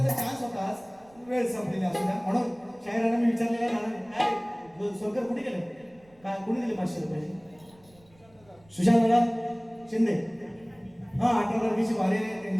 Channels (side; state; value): right; noise; rumble, 29 dB below the sound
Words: चान्स होता, आज वेळ संपलेली असू द्या. म्हणून शाहिरांना मी विचारलेलं आहे, काय सोलकर कुठे गेले, काय कुणी दिले 500 रुपये? सुशांत दादा शिंदे. हा 18 तारखेची वारी आहे